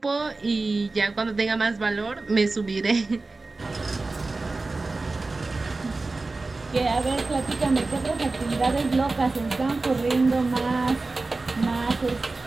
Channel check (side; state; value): left; quieter; 3.5 dB